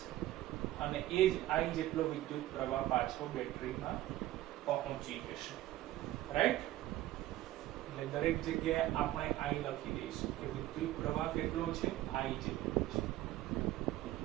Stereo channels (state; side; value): quieter; left; 15.0 dB